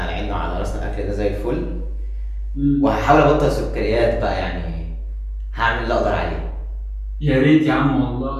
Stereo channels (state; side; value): identical; both; correlation 1.00